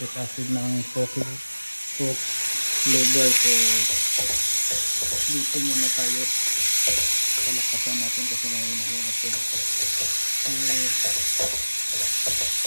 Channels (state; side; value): inverted; both; correlation -1.00